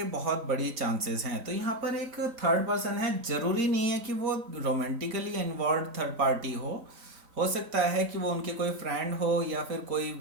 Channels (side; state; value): left; late; 3.9 ms